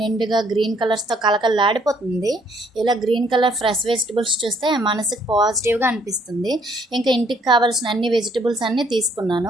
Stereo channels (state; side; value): normal; both; correlation 0.66